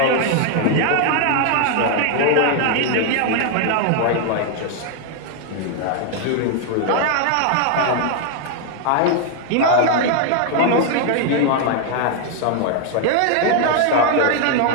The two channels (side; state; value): both; different; correlation 0.00